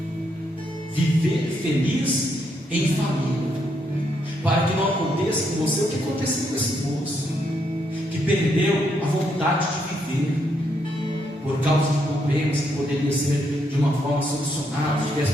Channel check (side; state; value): both; normal; correlation 0.76